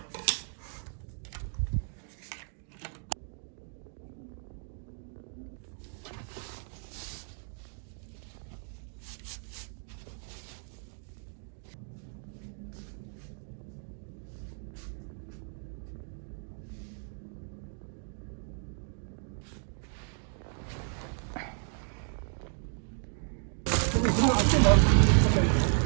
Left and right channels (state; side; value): silent; left; 55 dB below the other